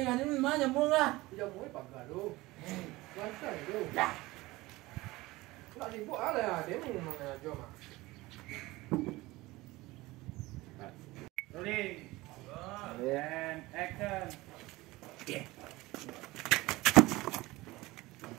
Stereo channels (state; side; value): quieter; left; 20.1 dB